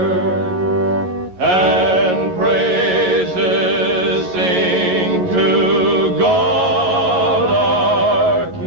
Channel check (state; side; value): late; left; 11 ms